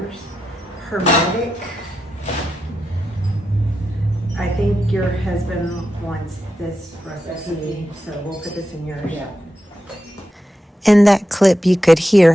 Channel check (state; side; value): normal; both; correlation 0.88